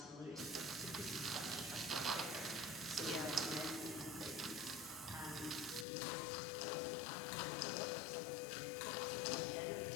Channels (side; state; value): right; drops out; at 5.9 s